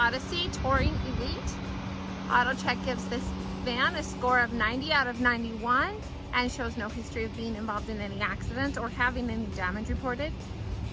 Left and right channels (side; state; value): both; identical; correlation 1.00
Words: Touring Elite. AutoCheck gives this van a score of 90 out of 91 and shows no history of being involved in any accidents or having any damage reported.